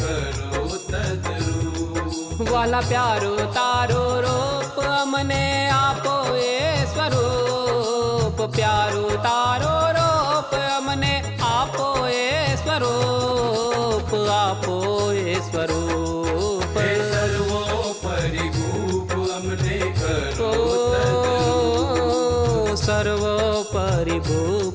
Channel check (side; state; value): both; identical; correlation 1.00